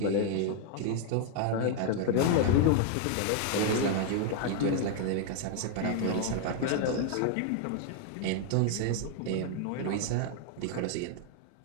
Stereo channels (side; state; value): both; different; correlation 0.00